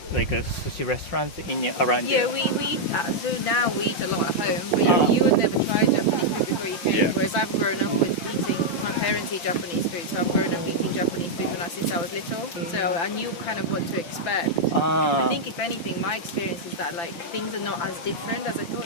like a sushi restaurants around Yeah, here. we eat, so now we eat a lot at home, but you have never tried Japanese food before you came, Yeah. whereas I've grown up with eating, my parents eat Japanese food, so I've grown up eating Japanese food since I was little, so I knew kind of what to expect. I think if anything, my experience is that like things are not as different as I thought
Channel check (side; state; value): right; late; 5.9 ms